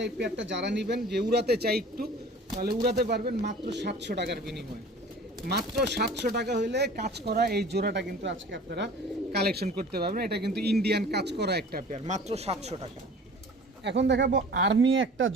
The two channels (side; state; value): both; normal; correlation 0.44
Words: এই পেয়ারটা যারা নেবেন, যে উড়াতে চাই একটু, তাহলে উড়াতে পারবেন মাত্র 700 টাকার বিনিময়ে। মাত্র 700 টাকা হইলে কাজ করা এই জোড়াটা কিন্তু আজকে আপনারা কালেকশন করতে পারবেন। এটা কিন্তু ইন্ডিয়ান কাজ করা একটা পেয়ার, মাত্র 700 টাকা। এখন দেখাবো আর্মি একটা